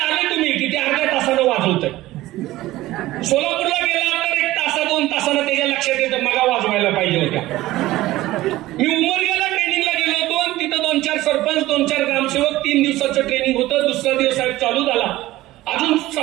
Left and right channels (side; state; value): left; quieter; 16.8 dB